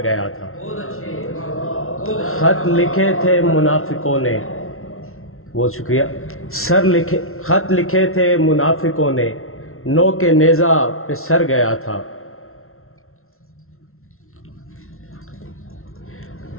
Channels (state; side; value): late; right; 0.62 ms